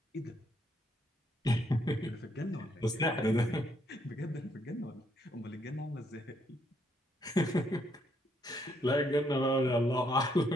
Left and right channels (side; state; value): both; normal; correlation 0.73